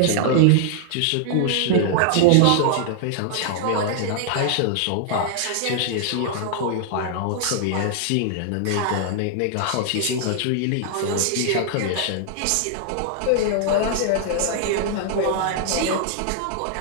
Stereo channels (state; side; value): different; both; correlation -0.01